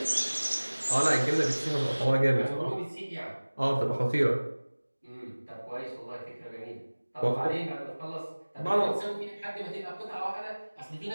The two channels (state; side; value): inverted; both; correlation -1.00